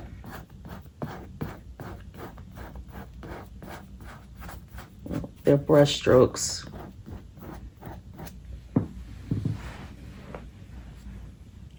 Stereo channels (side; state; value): both; identical; correlation 1.00